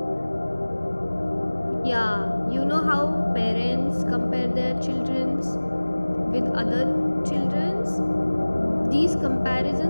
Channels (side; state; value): both; inverted; correlation -1.00